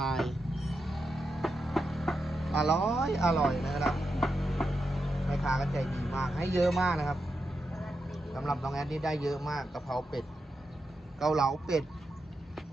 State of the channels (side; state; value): both; normal; correlation 0.87